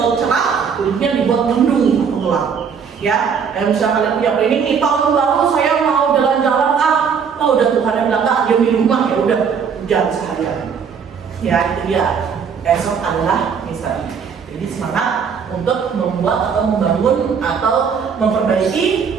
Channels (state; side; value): quieter; left; 6.6 dB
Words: cerah, kulitnya dibuat mendung atau gelap. Ya, dan misalnya kalian punya planning nih tahun baru saya mau jalan-jalan udah Tuhan yang bilang diam di rumah ya udah hujan seharian. Ya itu dia. Esok adalah misteri. Jadi semangat untuk membuat atau membangun atau memperbaiki